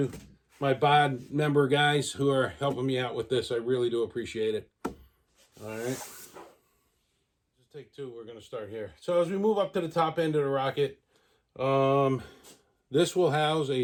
my BOD member guys who are helping me out with this. I really do appreciate it. All right. Just take two. We're going to start here. So as we move up to the top end of the rocket, this will house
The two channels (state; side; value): identical; both; correlation 1.00